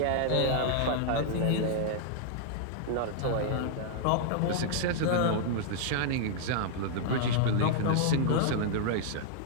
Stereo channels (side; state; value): both; different; correlation -0.01